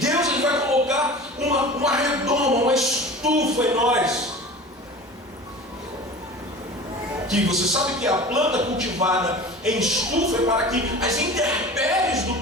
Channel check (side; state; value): both; normal; correlation 0.37